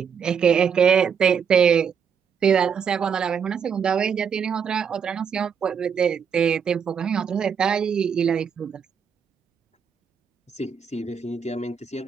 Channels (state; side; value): quieter; left; 7.0 dB